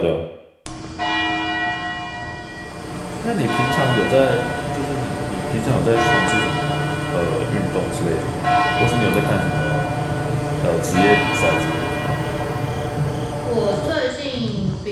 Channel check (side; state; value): both; identical; correlation 1.00